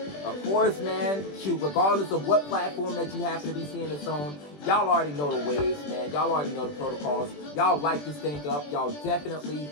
Of course, man, shoot, regardless of what platform that you happen to be seeing this on, y'all already know the ways, man. Y'all already know the protocols. Y'all like this thing up. Y'all definitely,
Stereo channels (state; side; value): late; right; 20 ms